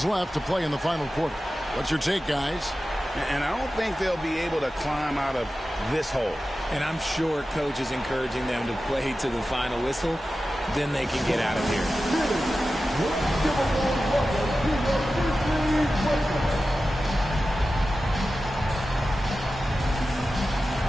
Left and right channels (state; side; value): normal; both; correlation 0.94